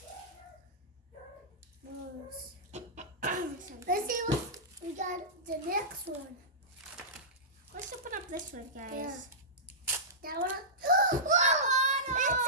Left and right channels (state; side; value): normal; both; correlation -0.18